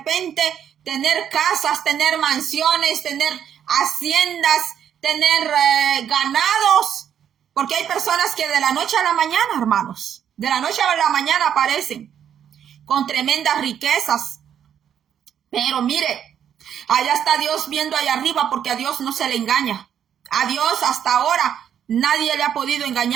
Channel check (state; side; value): quieter; left; 9.1 dB